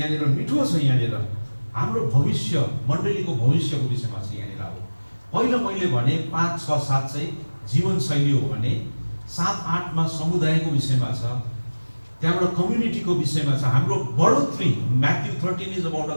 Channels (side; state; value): both; inverted; correlation -1.00